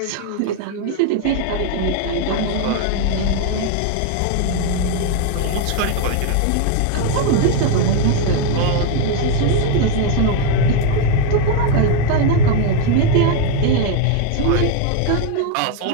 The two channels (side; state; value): both; different; correlation 0.01